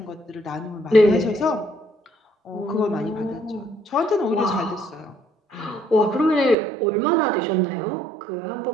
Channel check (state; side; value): drops out; left; at 6.6 s